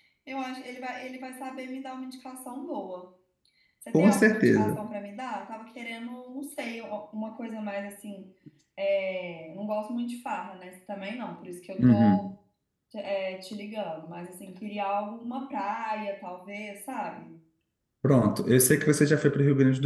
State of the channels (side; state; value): both; identical; correlation 1.00